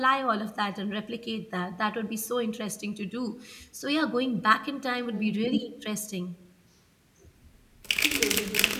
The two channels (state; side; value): identical; both; correlation 1.00